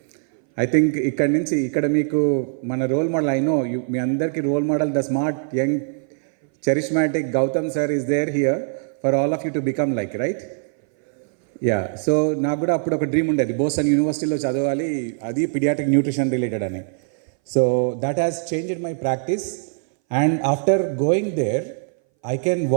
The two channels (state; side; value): silent; left; 61 dB below the other